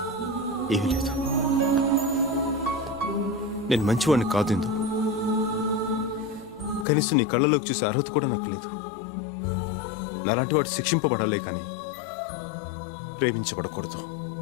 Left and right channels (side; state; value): right; drops out; at 6.9 s